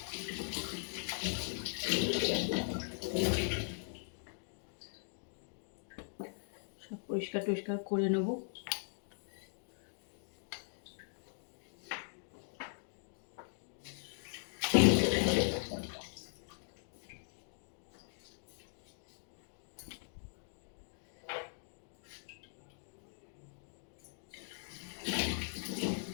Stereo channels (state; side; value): silent; right; digital silence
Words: সব পরিষ্কার টরিষ্কার করে নেব।